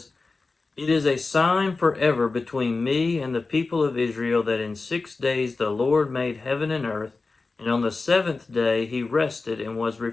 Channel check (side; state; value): right; quieter; 3.8 dB